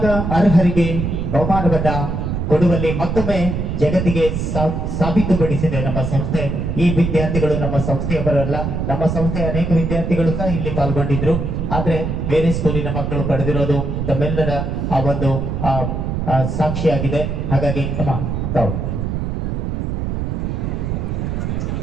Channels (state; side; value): noise; right; rumble, 2 dB below the sound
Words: ಅರ್ಹರಿಗೆ ಬಹುಮಾನವನ್ನ ಕೊಡುವಲ್ಲಿ ಮತ್ತೊಮ್ಮೆ ಜಗತ್ತಿಗೆ ಸಾಬೀತುಪಡಿಸಿದೆ ನಮ್ಮ ಸಂಸ್ಥೆ. ಈ ವಿದ್ಯಾರ್ಥಿಗಳು ನಮ್ಮ ಸಂಸ್ಥೆಯವರಲ್ಲ, ನಮ್ಮ ಸಂಸ್ಥೆಯ ಅನೇಕ ವಿದ್ಯಾರ್ಥಿಗಳು ಸಹ ಇಲ್ಲಿ ಪಾಲ್ಗೊಂಡಿದ್ರು. ಆದ್ರೆ ಬೇರೆ ಸ್ಕೂಲಿನ ಮಕ್ಕಳು ಪಡೆದಿರೋದು ತಮ್ಮೆಲ್ಲರ ಆ ಒಂದು ಸಾಕ್ಷಿಯಾಗಿದೆ. ಹಾಗಾಗಿ ತಾವು